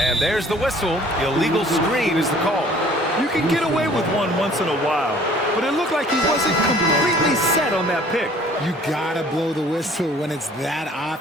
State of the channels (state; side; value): normal; both; correlation 0.54